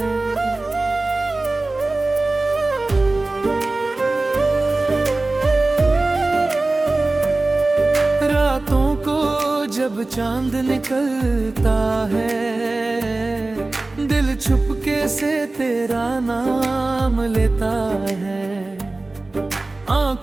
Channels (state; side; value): quieter; left; 3.1 dB